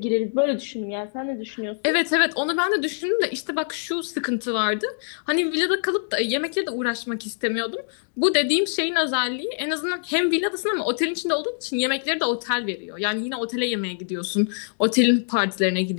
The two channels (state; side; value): silent; right; digital silence